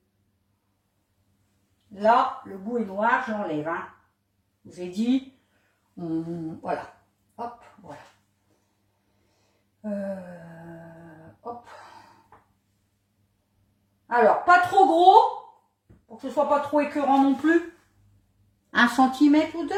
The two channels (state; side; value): identical; both; correlation 1.00